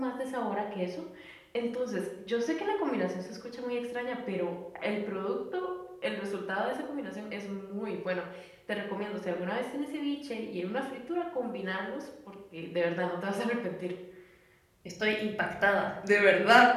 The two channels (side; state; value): both; identical; correlation 1.00